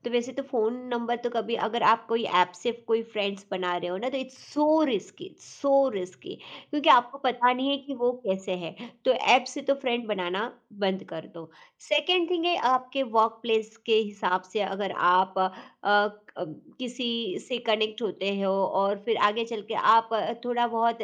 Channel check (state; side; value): identical; both; correlation 1.00